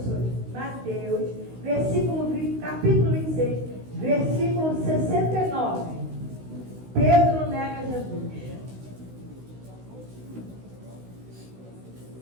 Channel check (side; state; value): left; late; 16 ms